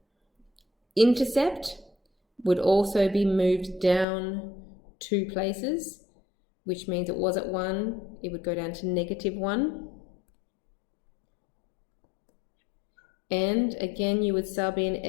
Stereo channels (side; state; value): right; drops out; at 4.0 s